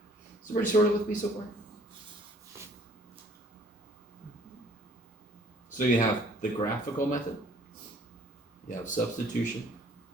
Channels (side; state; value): both; normal; correlation 0.57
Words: So everybody sort of with me so far? So you have the graphical method, you have substitution,